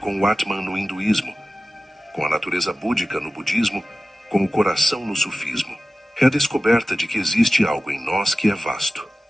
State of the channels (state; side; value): normal; both; correlation 0.95